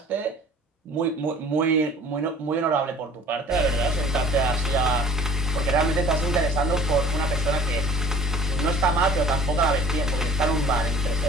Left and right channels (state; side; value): normal; both; correlation 0.48